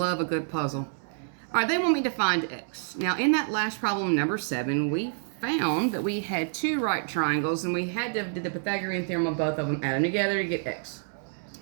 a good puzzle. All right, they want me to find x. Now, in that last problem, number 7, we found that we had 2 right triangles, and we had to do the Pythagorean theorem on both of them, add them together to get x.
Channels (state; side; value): silent; left; digital silence